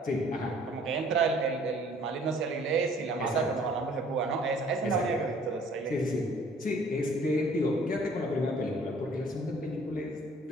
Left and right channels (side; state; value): both; normal; correlation 0.56